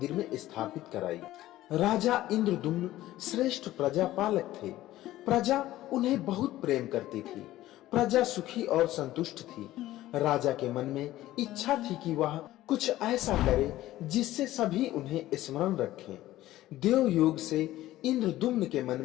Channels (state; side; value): quieter; right; 15.3 dB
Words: में स्थापित कराई। राजा इंद्रदुम्न श्रेष्ठ प्रजापालक थे। प्रजा उन्हें बहुत प्रेम करती थी। प्रजा सुखी और संतुष्ट थी। राजा के मन में इच्छा थी कि वह कुछ ऐसा करे जिससे सभी उन्हें स्मरण रखें। देव योग से इंद्रदुम्न के मन